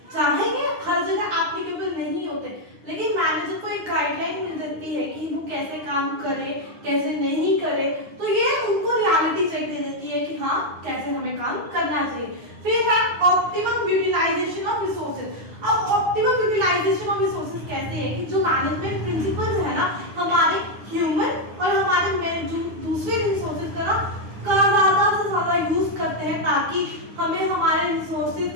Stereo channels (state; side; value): late; left; 9.8 ms